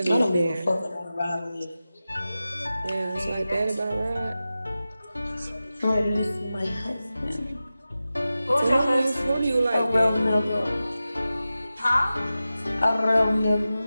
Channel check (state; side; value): inverted; both; correlation -0.94